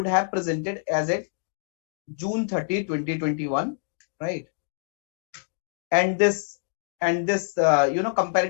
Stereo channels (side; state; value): right; silent; digital silence